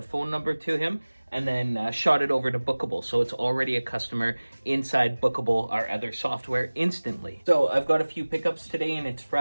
phone number to him, and then shot it over to Bookable. So it's already a customer inside Bookable, our other software, instantly. So I've got a few pickups today and it's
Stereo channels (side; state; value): both; inverted; correlation -1.00